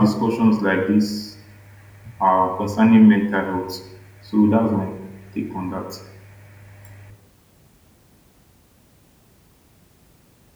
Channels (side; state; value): both; identical; correlation 1.00